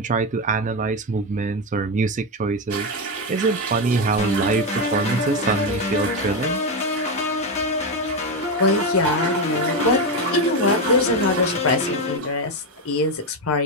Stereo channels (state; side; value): normal; both; correlation 0.10